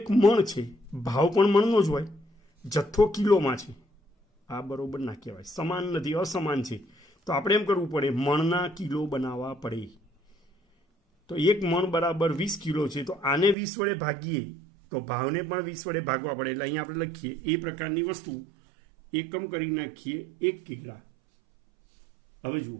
મણ છે, ભાવ પણ મણનો જ હોય, જથ્થો કિલોમાં છે. આ બરોબર ના કહેવાય, સમાન નથી, અસમાન છે. તો આપણે એમ કરવું પડે, મણના કિલો બનાવવા પડે. તો 1 મણ બરાબર 20 કિલો છે, તો આને 20 વડે ભાગીએ તો ભાવને પણ 20 વડે ભાગવા પડે. એટલે અહીંયા આપણે લખીએ એ પ્રકારની વસ્તુ એકમ કરી નાખીએ 1 કિગ્રા. હવે જુઓ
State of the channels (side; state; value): left; drops out; at 13.6 s